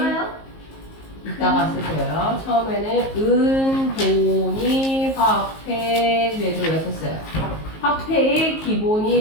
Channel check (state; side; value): late; right; 19 ms